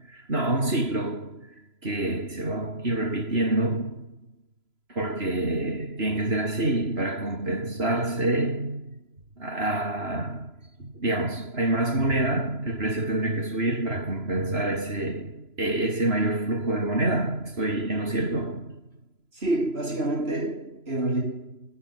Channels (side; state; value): left; late; 3.0 ms